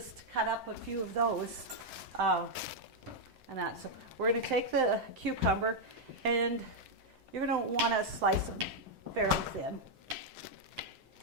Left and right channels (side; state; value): left; late; 7.7 ms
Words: cut up a few of those. And that. So we're going to take the cucumber, and you're going to want to slice them fairly thin.